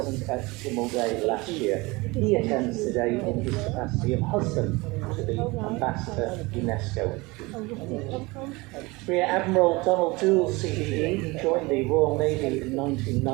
at Tynwald Day last year. He attends today in his capacity of husband to the Ambassador UNESCO. Rear Admiral Donald Doole, CBE, he joined the Royal Navy in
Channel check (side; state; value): left; quieter; 23.7 dB